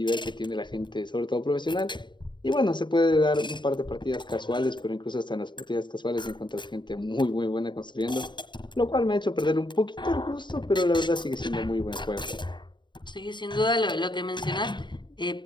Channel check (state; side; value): late; right; 0.22 ms